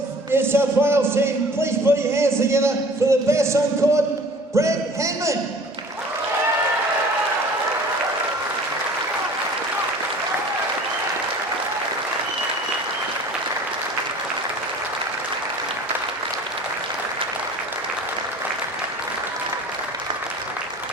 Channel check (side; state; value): both; normal; correlation 0.46